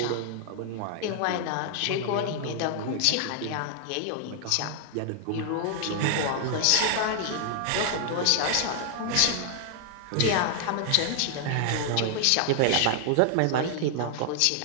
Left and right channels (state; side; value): different; both; correlation 0.00